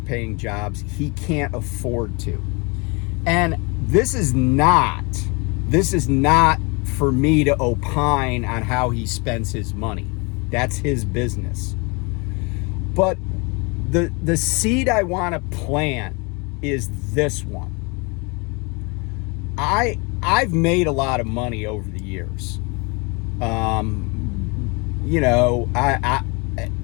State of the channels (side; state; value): right; quieter; 29.6 dB